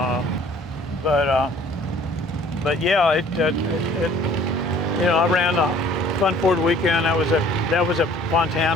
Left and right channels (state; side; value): normal; both; correlation 0.53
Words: yeah, you know, I ran the Fun Ford Weekend. That was at